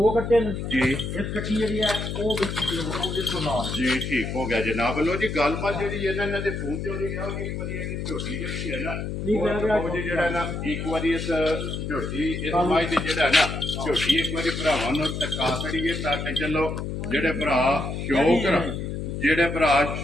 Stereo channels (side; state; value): left; noise; hum, 4 dB below the sound